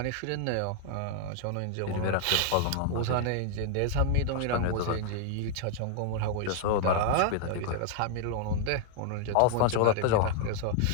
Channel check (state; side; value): different; both; correlation 0.00